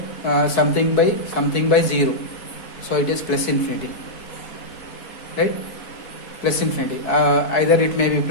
Something by 0. So it is plus infinity. Right? Plus infinity. Either it may be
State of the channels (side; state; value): right; late; 4.6 ms